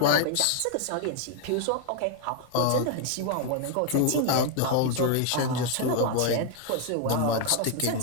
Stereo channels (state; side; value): different; both; correlation 0.00